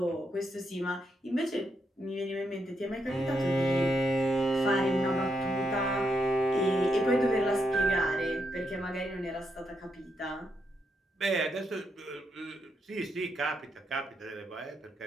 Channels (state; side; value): normal; both; correlation 0.80